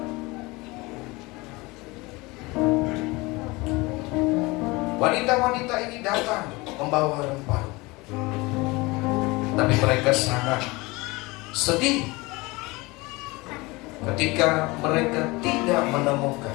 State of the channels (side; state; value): right; quieter; 23.4 dB